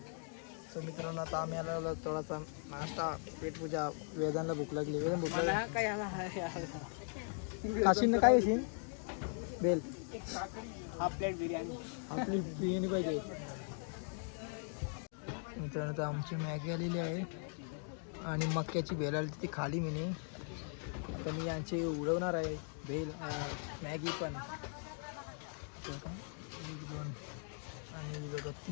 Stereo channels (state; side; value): silent; right; 52 dB below the other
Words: सो मित्रांनो आता आम्ही आलो थोडासा नाश्ता पेटपूजा. वेदांना भूक लागली. वेदांना भूक लागली. काशीन काय येशील बेल. Half plate biryani. आपली बिर्याणी पाहिजे. मित्रांनो तर आमची मॅगी आलेली आहे आणि मक्याची भेल आली ती खाली मी. आता मी यांची उडवणार आहे भेल मॅगी पण. 1 2 आणि बघा